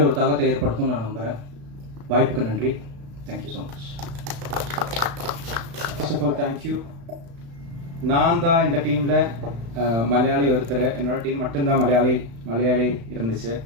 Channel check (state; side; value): late; left; 35 ms